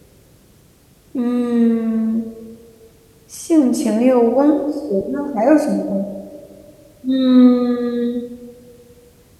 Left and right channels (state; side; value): identical; both; correlation 1.00